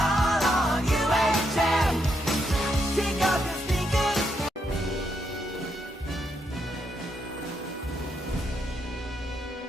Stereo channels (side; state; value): both; normal; correlation 0.78